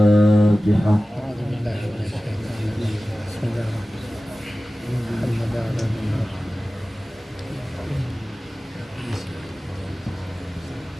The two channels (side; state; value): both; normal; correlation 0.96